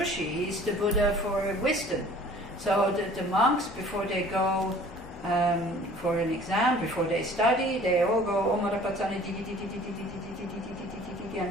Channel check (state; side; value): normal; both; correlation 0.50